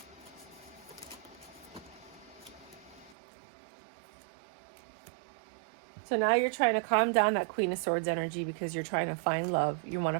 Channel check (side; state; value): left; drops out; at 3.2 s